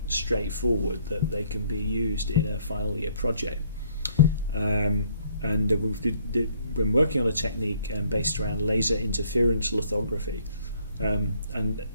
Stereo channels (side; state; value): both; inverted; correlation -0.65